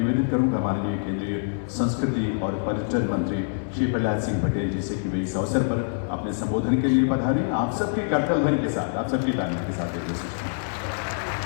करूंगा माननीय केंद्रीय संस्कृति और पर्यटन मंत्री श्री प्रहलाद सिंह पटेल जी से कि वे इस अवसर पर अपने संबोधन के लिए पधारें। आप सबकी करतल ध्वनि के साथ, आप सबकी तालियों के साथ ये सूचना।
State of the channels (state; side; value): silent; right; digital silence